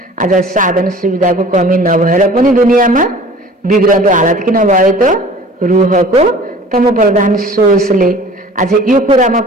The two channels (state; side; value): normal; both; correlation 0.46